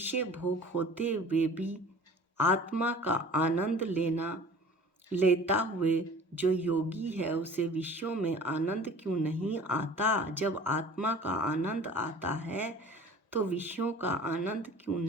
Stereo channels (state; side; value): normal; both; correlation 0.44